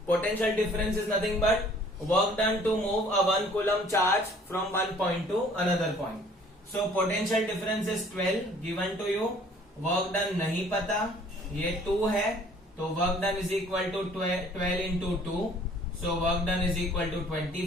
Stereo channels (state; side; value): normal; both; correlation 0.55